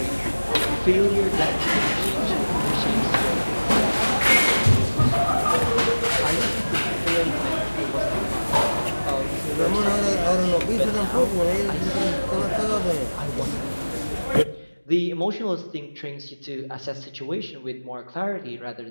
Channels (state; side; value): inverted; both; correlation -1.00